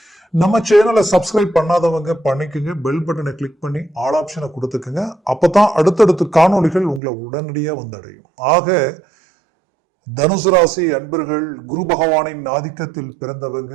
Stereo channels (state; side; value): drops out; left; at 7.0 s